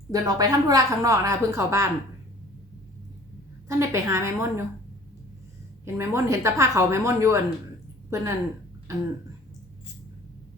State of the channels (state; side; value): normal; both; correlation 0.49